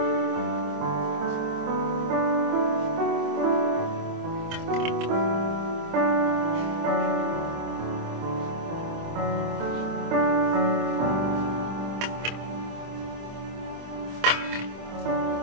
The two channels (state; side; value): late; left; 25 ms